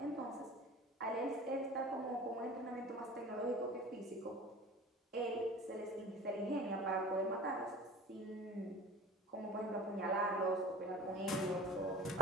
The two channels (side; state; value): both; normal; correlation 0.42